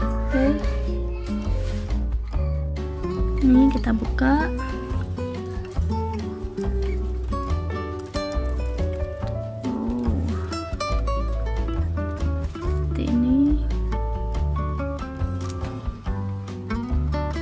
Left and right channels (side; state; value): both; identical; correlation 1.00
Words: Ini kita buka. Seperti ini.